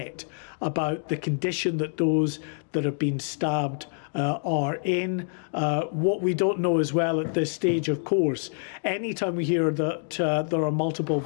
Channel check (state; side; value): silent; right; 61 dB below the other